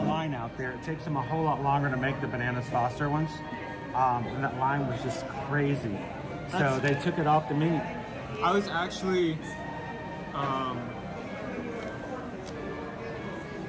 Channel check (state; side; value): identical; both; correlation 1.00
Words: out there. It takes them a whole lot longer to make the Bananas Foster ones. And that line was just crazy. So they took it off the menu. I was actually,